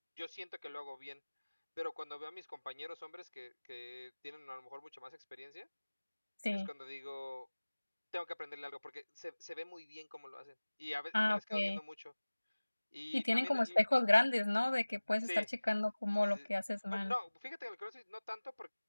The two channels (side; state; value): both; inverted; correlation -1.00